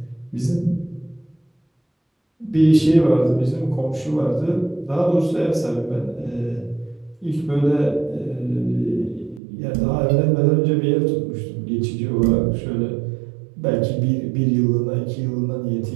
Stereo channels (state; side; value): drops out; left; at 9.4 s